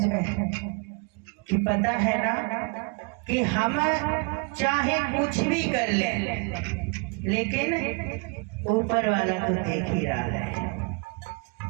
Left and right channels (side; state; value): left; quieter; 31.4 dB